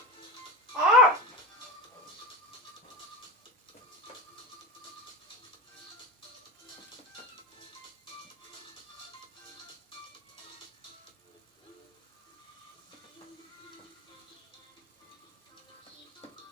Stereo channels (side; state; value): both; normal; correlation 0.26